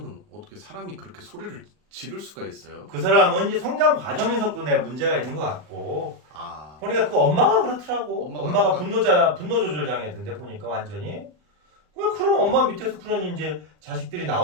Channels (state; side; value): late; left; 39 ms